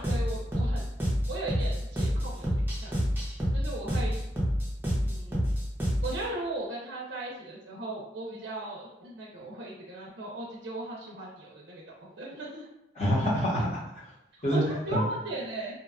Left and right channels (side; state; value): both; normal; correlation 0.76